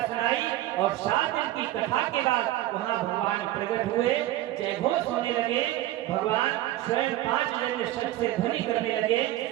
सुनाई और 7 दिन की कथा के बाद वहां भगवान प्रकट हुए, जय घोष होने लगे। भगवान स्वयं 5 जन्य शब्द से ध्वनि करने लगे।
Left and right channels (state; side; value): quieter; left; 15.1 dB